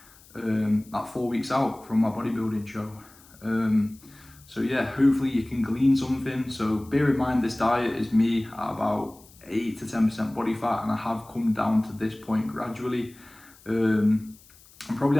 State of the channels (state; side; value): noise; left; hiss, 25 dB below the sound